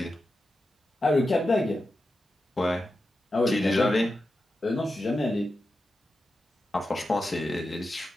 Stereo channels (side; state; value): both; normal; correlation 0.90